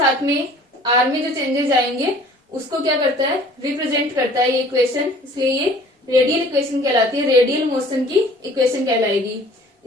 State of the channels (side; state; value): both; normal; correlation 0.51